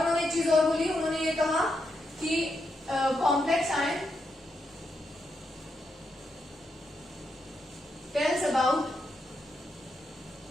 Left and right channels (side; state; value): both; normal; correlation 0.82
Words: एक चीज और बोली, उन्होंने ये कहा कि complex ion tells about